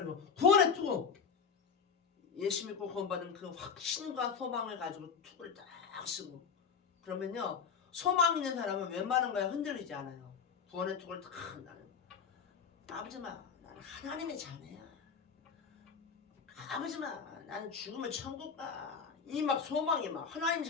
구원의 투구 예수 믿고 구원받은 그 확신과 소망을 가지고 투구를 딱 쓰고 그러면요 소망 있는 사람은 웬만한 거에 흔들리지 않아요. 구원의 투구를 탁 나는 아버지마 나는 하나님의 자녀야. 아버지마 나는 죽으면 천국 가. 이 막 소망이 막 하나님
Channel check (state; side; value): quieter; right; 6.3 dB